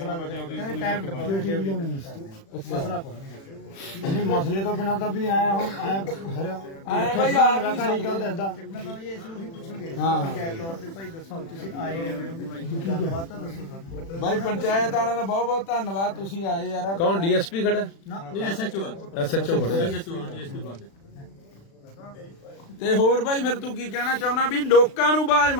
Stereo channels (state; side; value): late; right; 36 ms